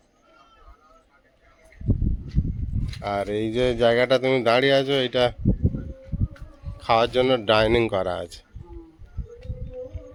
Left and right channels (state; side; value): identical; both; correlation 1.00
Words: আর এই যে জায়গাটা তুমি দাঁড়িয়ে আছো এটা খাওয়ার জন্য ডাইনিং করা আছে।